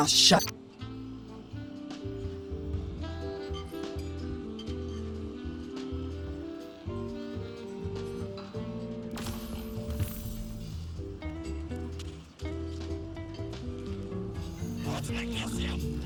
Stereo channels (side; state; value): both; identical; correlation 1.00